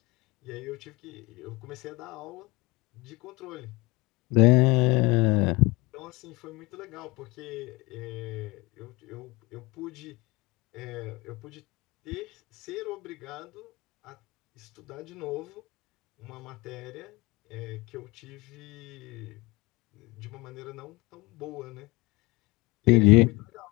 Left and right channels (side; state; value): right; quieter; 24.0 dB